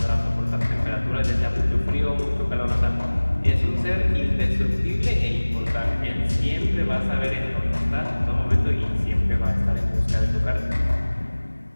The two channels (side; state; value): both; inverted; correlation -1.00